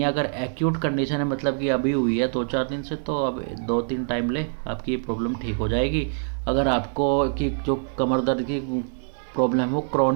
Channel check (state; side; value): silent; left; 62 dB below the other